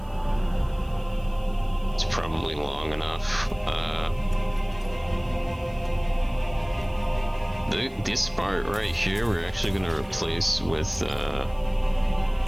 It's probably long enough. This part right here, we're actually gonna replace with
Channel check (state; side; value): noise; right; hiss, 28 dB below the sound